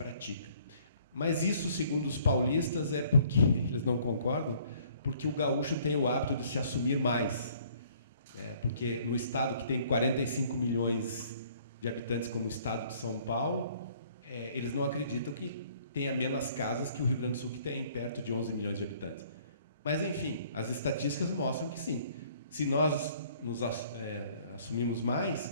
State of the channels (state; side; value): inverted; both; correlation -0.59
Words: Mas isso, segundo os paulistas, é porque eles não concordam, porque o gaúcho tem o hábito de se assumir mais. Porque no estado que tem 45 milhões de habitantes, como o estado de São Paulo, eles não acreditam que tenha menos casas que o Rio Grande do Sul, que tem perto de 11 milhões de habitantes. Mas, enfim, as estatísticas mostram que sim. Se nós nos assumimos